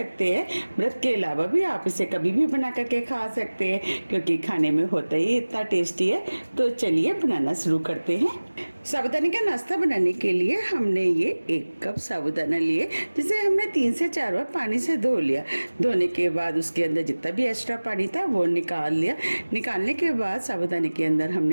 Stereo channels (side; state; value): both; inverted; correlation -1.00